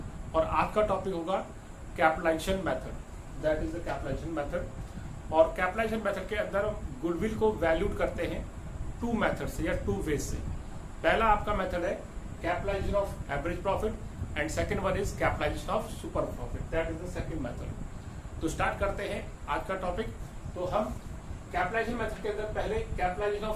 और आज का टॉपिक होगा capitalisation method, that is the capitalisation method. और कैपिटलाइजेशन मेथड के अंदर हम गुडविल को वैल्यूड करते हैं टू मेथड से या टू वेज से। पहला आपका मेथड है capitalisation of average profit and second one is capitalisation of super profit, that is the second method. तो स्टार्ट करते हैं आज का टॉपिक। तो हम कैपिटलाइजेशन मेथड के अंदर पहले capitalisation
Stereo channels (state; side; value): identical; both; correlation 1.00